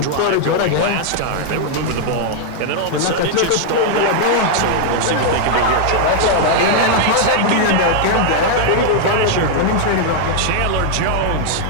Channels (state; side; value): different; both; correlation 0.00